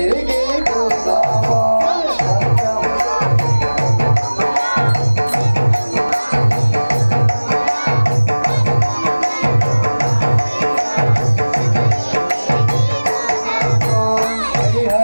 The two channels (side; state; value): both; inverted; correlation -1.00